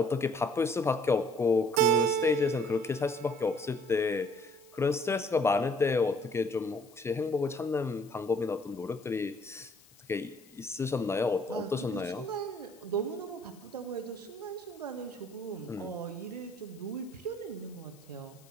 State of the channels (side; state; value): left; noise; hiss, 27 dB below the sound